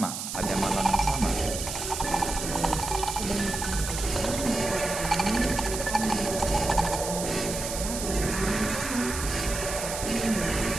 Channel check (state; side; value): noise; right; hiss, 5 dB below the sound